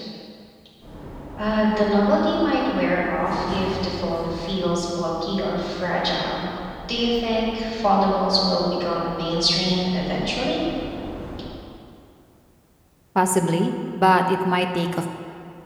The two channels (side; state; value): both; identical; correlation 1.00